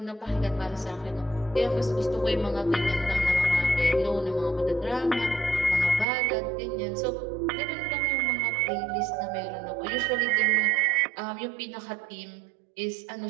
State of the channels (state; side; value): drops out; left; at 6.1 s